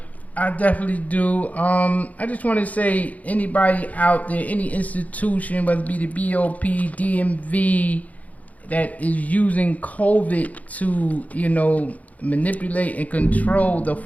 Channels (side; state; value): right; late; 0.073 ms